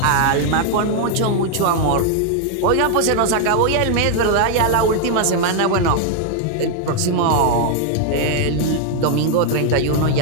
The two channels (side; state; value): both; different; correlation 0.00